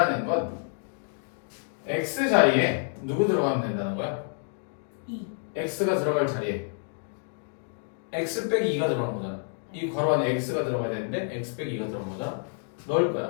건 x 자리에 누구 들어가면 된다는 거야? 2. x가 들어갈 자리에 x 빼기 2가 들어가는 거잖아. 이 괄호 안에 x가 들어가야 되는데 x 빼기 2가 들어간 거잖아. 넣을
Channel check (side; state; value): right; silent; 59 dB below the other